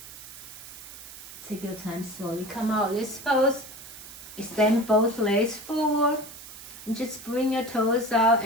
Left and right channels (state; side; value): noise; right; hiss, 15 dB below the sound